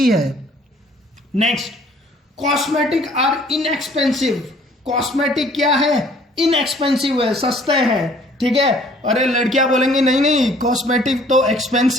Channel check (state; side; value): normal; both; correlation 0.57